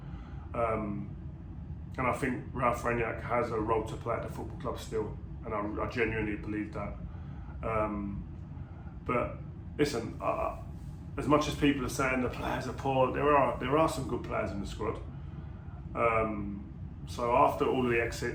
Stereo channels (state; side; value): identical; both; correlation 1.00